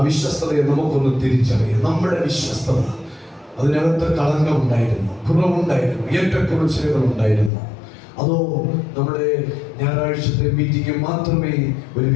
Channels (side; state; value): right; drops out; at 7.5 s